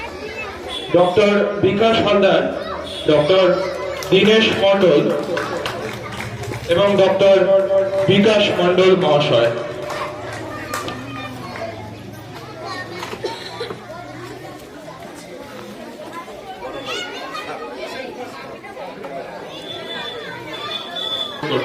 ডক্টর বিকাশ হালদার, ডক্টর দীনেশ মণ্ডল এবং ডক্টর বিকাশ মণ্ডল মহাশয়।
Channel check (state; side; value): identical; both; correlation 1.00